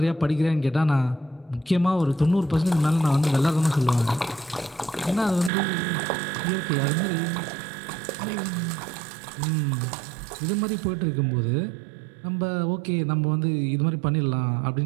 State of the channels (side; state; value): left; drops out; at 5.5 s